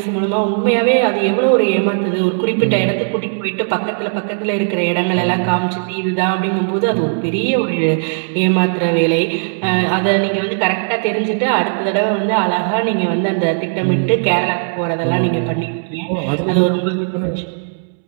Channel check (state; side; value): silent; left; 68 dB below the other